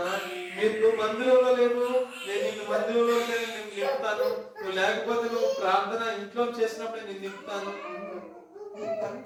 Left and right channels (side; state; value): both; identical; correlation 1.00